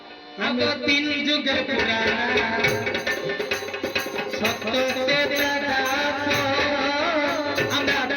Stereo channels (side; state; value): both; identical; correlation 1.00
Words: আমি 3 যুগের পুরানা। সত্যতে দাদা তো, আমরা